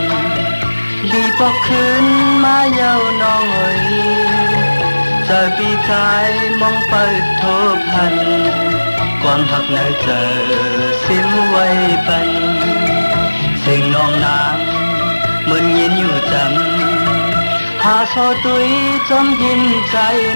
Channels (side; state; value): both; inverted; correlation -1.00